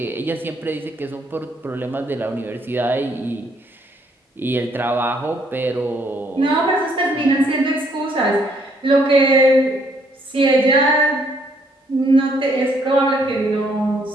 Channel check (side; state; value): both; normal; correlation 0.68